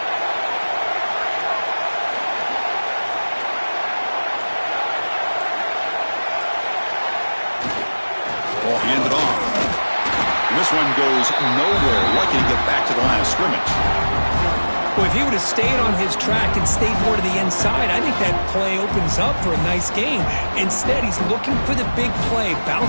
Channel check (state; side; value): inverted; both; correlation -1.00